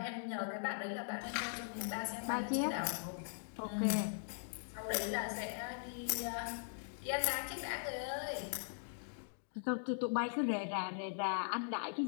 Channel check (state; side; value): silent; right; digital silence